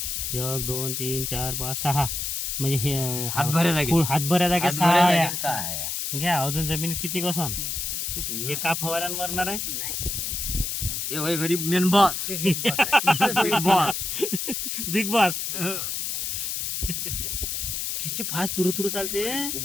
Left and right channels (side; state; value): left; noise; hiss, 2 dB below the sound